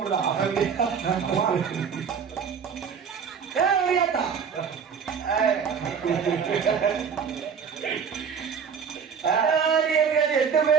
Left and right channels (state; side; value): quieter; left; 6.7 dB